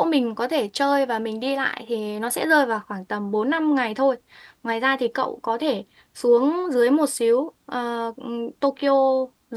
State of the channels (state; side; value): identical; both; correlation 1.00